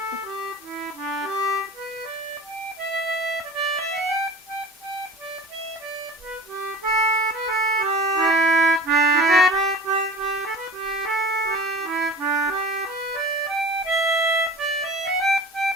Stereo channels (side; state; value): both; normal; correlation 0.38